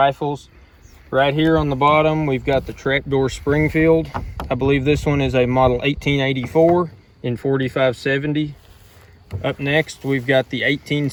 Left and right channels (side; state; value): both; identical; correlation 1.00